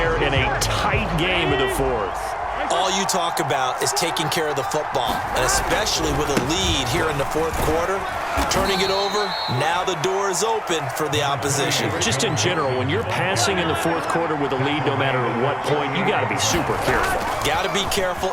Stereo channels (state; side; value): identical; both; correlation 1.00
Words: in a tight game in the fourth. All you talk about is taking care of the football, and especially with a lead here in the fourth quarter, turning it over, now the door is open for the opposition. Just in general, when you're passing in the fourth quarter with a lead, no matter at what point, you got to be super careful. Got to be careful,